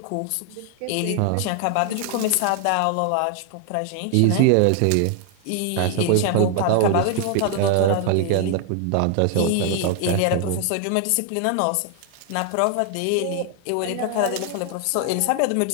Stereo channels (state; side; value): different; both; correlation 0.00